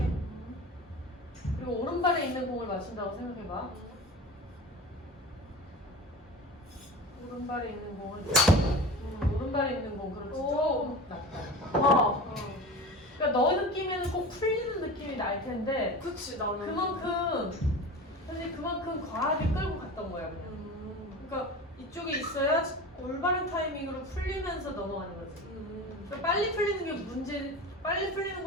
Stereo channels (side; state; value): both; normal; correlation 0.33